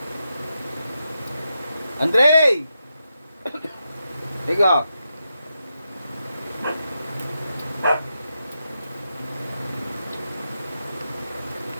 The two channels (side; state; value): both; inverted; correlation -0.86